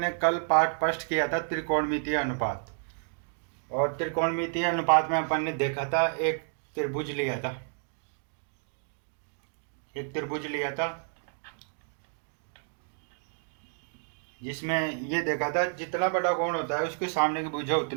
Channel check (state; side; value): silent; left; digital silence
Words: कल पाठ फर्स्ट किया था त्रिकोणमितीय अनुपात। और त्रिकोणमितीय अनुपात में अपन ने देखा था एक त्रिभुज लिया था। जिसमें ये देखा था जितना बड़ा कोण होता है उसके सामने की भुजा